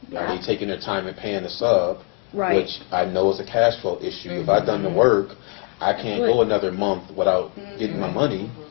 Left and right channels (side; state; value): right; quieter; 30.3 dB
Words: are they taking their time and paying the sub, Right. which I know is a cash flow issue. If I've done the work, I can't go another month without getting my money.